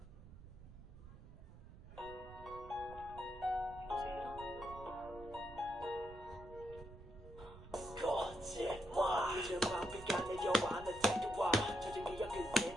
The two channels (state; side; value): noise; right; rumble, 16 dB below the sound